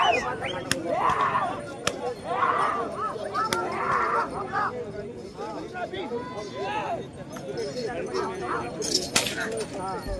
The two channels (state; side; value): identical; both; correlation 1.00